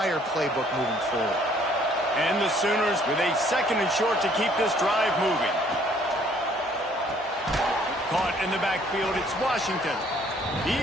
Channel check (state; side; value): normal; both; correlation 0.61